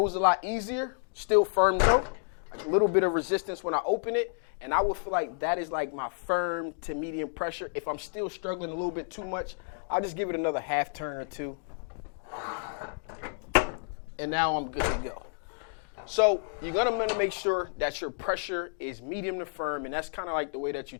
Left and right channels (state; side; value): silent; right; digital silence